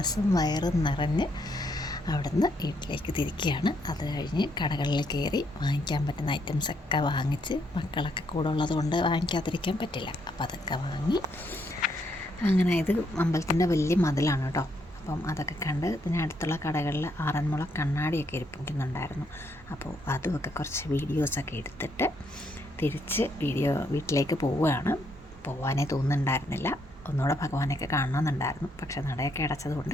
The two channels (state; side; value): normal; both; correlation 0.74